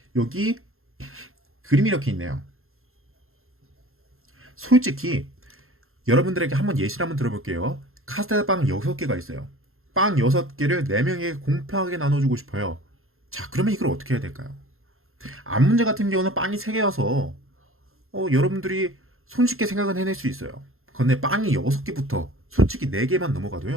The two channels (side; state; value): left; late; 0.61 ms